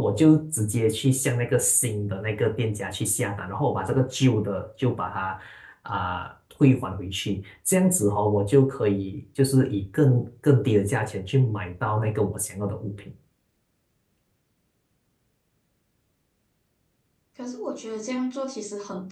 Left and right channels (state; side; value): identical; both; correlation 1.00